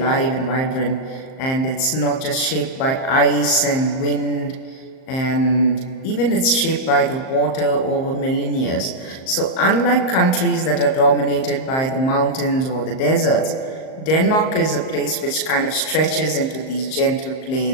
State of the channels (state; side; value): late; right; 38 ms